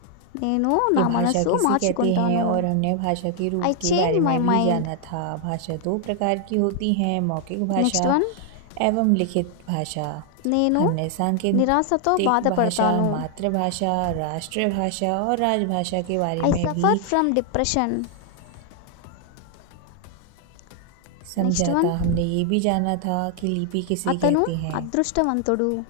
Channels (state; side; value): different; both; correlation 0.00